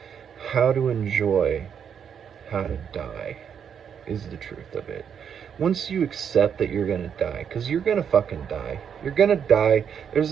how to enjoy how to die, is the truth of it. Once you accept that you're gonna die, because you're gonna fucking die, you're gonna die, there's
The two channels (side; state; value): left; quieter; 7.8 dB